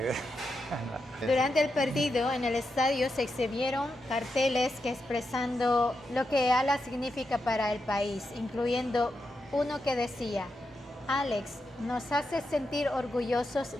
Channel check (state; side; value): normal; both; correlation 0.86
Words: Durante el partido en el estadio se exhibieron carteles que expresando lo que ALA significa para el país, incluyendo uno que decía: "Alex, nos hace sentir orgullosos